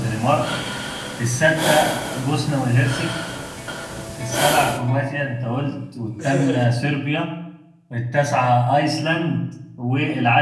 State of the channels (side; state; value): both; identical; correlation 1.00